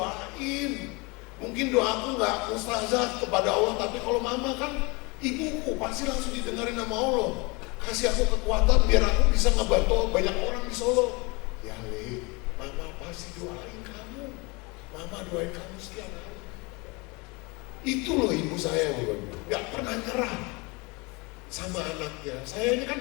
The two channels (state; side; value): quieter; right; 27.2 dB